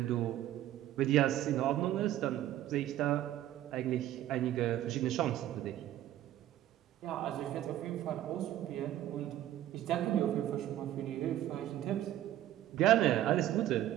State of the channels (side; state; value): left; quieter; 12.9 dB